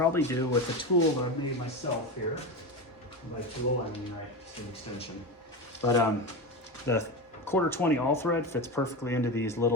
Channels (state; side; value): normal; both; correlation 0.20